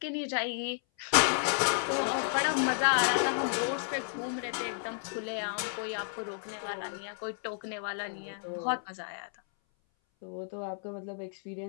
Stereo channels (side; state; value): right; silent; 56 dB below the other